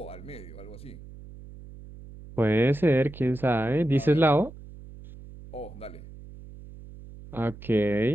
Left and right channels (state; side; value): noise; right; hum, 17 dB below the sound